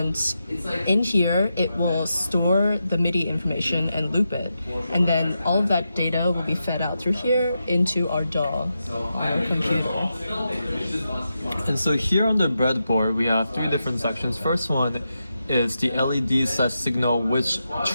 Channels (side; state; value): both; inverted; correlation -0.87